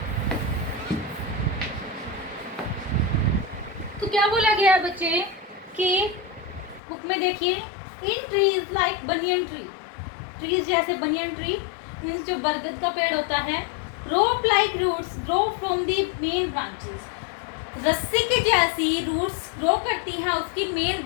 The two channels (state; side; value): drops out; right; at 6.8 s